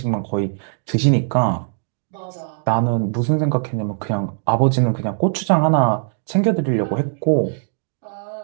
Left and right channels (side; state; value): left; silent; digital silence